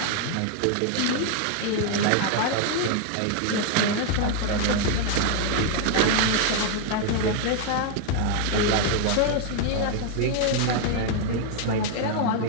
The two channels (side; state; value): both; different; correlation 0.00